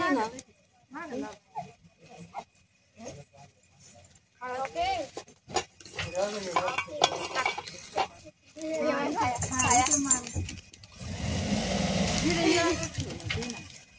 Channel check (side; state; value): both; identical; correlation 1.00